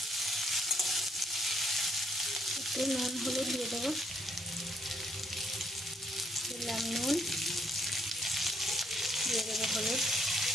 একটু নুন হলুদ দিয়ে দেব। দিলাম নুন, দিয়ে দেবো হলুদ।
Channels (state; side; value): normal; both; correlation 0.71